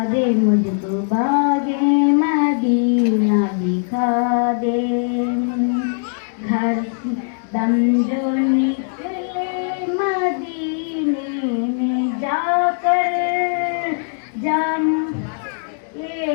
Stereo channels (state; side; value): silent; right; digital silence